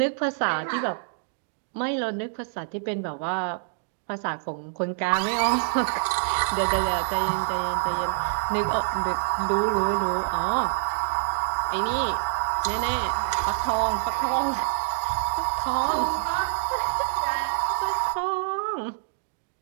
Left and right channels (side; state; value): left; silent; digital silence